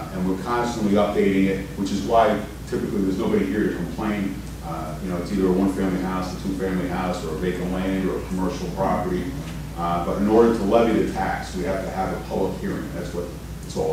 we're constantly updating it, which is why typically there's nobody here to complain. You know, it's either a one-family house, a two-family house, or a vacant land, or a commercial property. But in order to levy the tax, we have to have a public hearing. That's what it's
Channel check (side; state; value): both; identical; correlation 1.00